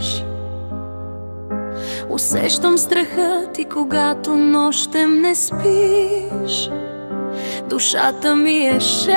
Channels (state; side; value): inverted; both; correlation -1.00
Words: Усещам страха ти, когато нощем не спиш. Душата ми е